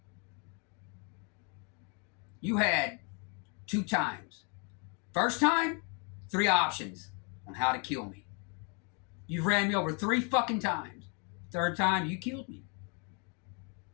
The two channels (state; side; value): quieter; right; 36.3 dB